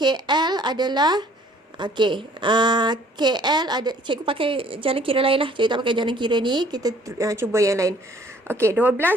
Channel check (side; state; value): both; normal; correlation 0.57